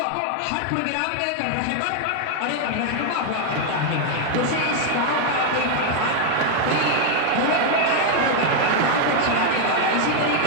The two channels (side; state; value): both; different; correlation 0.00